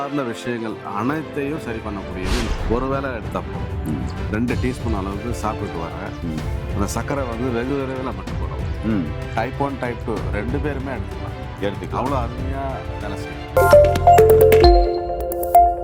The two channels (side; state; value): both; identical; correlation 1.00